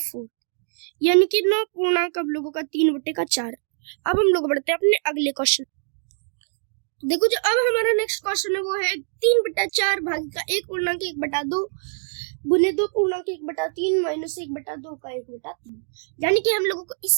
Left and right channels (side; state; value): left; silent; 63 dB below the other